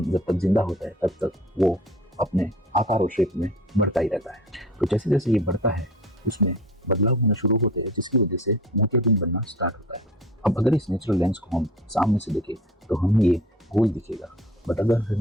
जब तक जिंदा होता है तब तक वो अपने आकार और शेप में बढ़ता ही रहता है। तो जैसे जैसे ये बढ़ता है उसमें बदलाव होना शुरू होते हैं, जिसकी वजह से मोतियाबिंद बनना स्टार्ट होता है। अब अगर इस नेचुरल लेंस को हम सामने से देखें तो हमें ये गोल दिखेगा, बट अगर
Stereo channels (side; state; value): both; normal; correlation 0.43